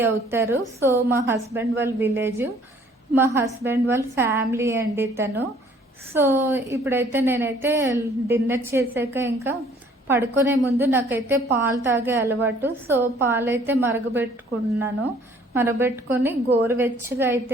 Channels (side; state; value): both; normal; correlation 0.58